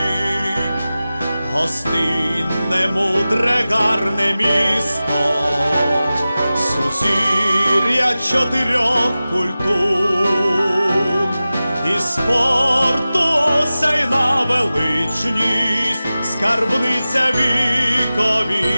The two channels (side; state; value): both; inverted; correlation -0.96